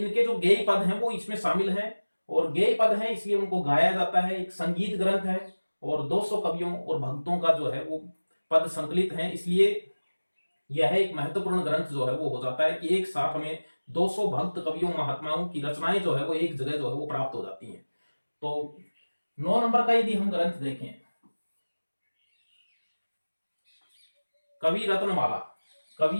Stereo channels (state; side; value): inverted; both; correlation -1.00